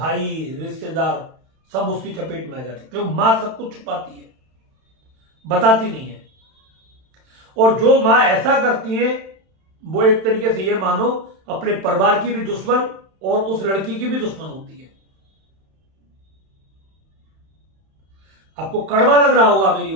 रिश्तेदार सब उसकी चपेट में आ जाते, क्योंकि मां सब कुछ छुपाती है, बताती नहीं है। और जो मां ऐसा करती है वो एक तरीके से ये मानो अपने परिवार की भी दुश्मन और उस लड़की की भी दुश्मन होती है। आपको कड़वा लग रहा होगा मेरी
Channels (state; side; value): late; left; 31 ms